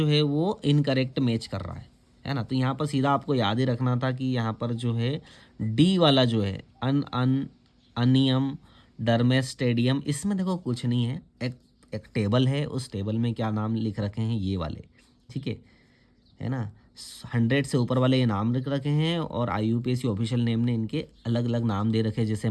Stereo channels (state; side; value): identical; both; correlation 1.00